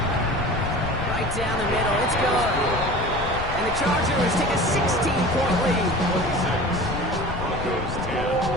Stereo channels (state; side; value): noise; left; rumble, 8 dB below the sound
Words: Right down the middle, it's good. And the Chargers take a 16-point lead. 26, Broncos 10.